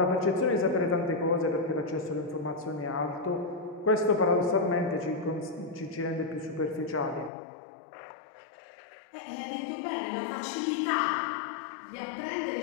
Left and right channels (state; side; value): drops out; right; at 7.3 s